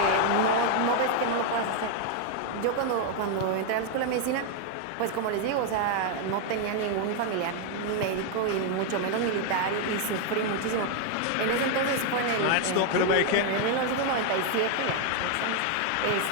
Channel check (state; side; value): different; both; correlation 0.01